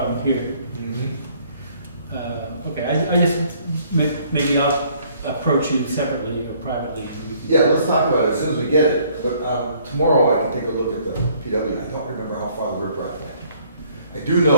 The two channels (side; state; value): both; inverted; correlation -0.61